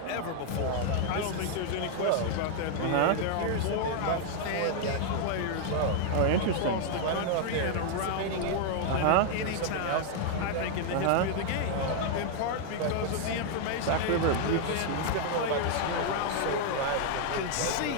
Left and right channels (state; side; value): different; both; correlation 0.00